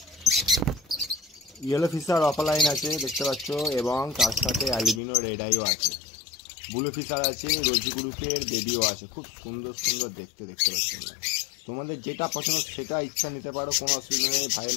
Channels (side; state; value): right; drops out; at 5.0 s